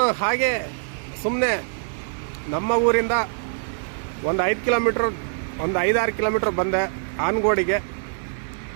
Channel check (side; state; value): left; silent; 63 dB below the other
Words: ಹಾಗೆ ಸುಮ್ಮನೆ ನಮ್ಮ ಊರಿಂದ ಒಂದು 5-6 ಕಿಲೋಮೀಟ್ರ್ ಬಂದೆ ಆನಗೋಡಿಗೆ.